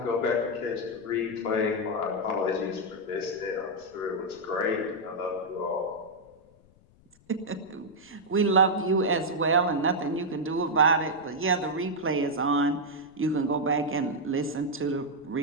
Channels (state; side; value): noise; left; rumble, 29 dB below the sound